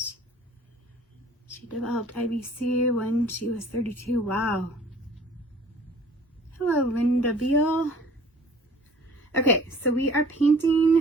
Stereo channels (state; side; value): normal; both; correlation 0.50